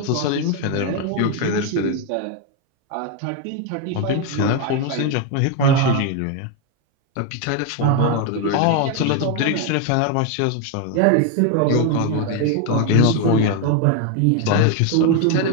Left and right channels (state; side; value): different; both; correlation 0.01